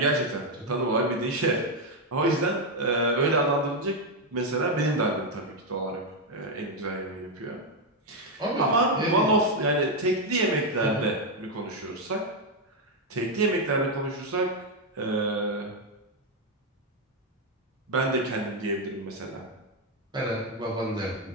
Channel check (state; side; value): normal; both; correlation 0.03